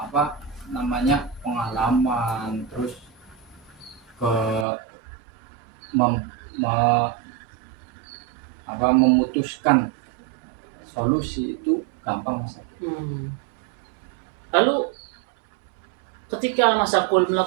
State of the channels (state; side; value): drops out; left; at 4.7 s